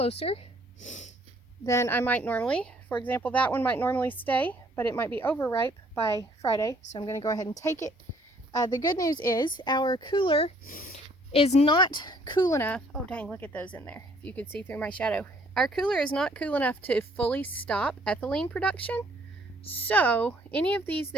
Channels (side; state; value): both; normal; correlation 0.62